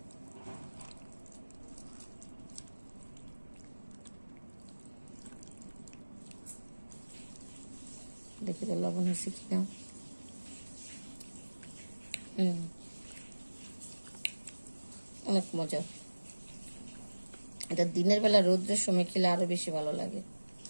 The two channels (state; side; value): inverted; both; correlation -1.00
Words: দেখি তো লবণ হয়েছে কিনা। অনেক মজা। এটা দিনের বেলা রৌদ্রের সময় খেলে আরো বেশি ভালো লাগে।